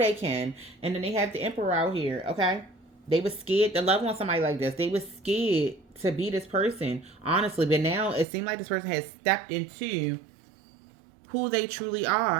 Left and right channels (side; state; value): left; drops out; at 8.2 s